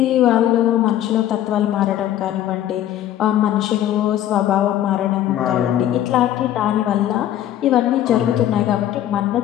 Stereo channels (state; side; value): quieter; right; 12.0 dB